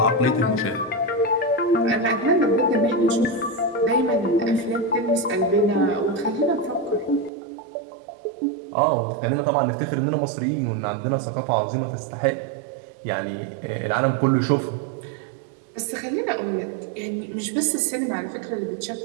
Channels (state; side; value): drops out; left; at 7.3 s